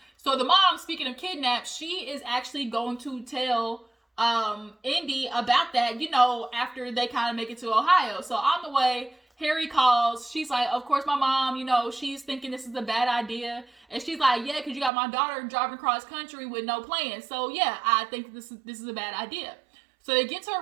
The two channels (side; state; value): left; drops out; at 14.9 s